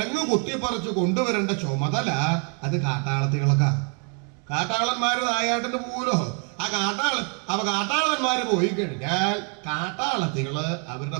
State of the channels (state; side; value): quieter; left; 36.0 dB